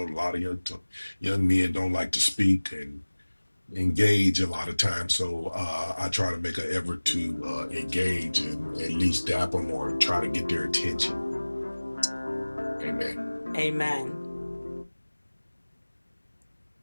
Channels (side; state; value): both; inverted; correlation -1.00